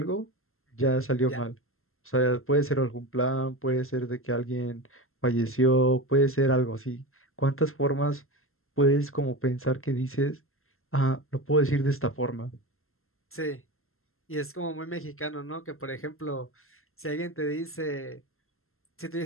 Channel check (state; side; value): late; right; 0.62 ms